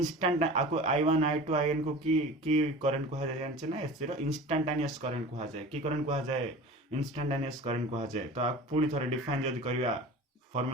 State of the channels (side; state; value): both; normal; correlation 0.37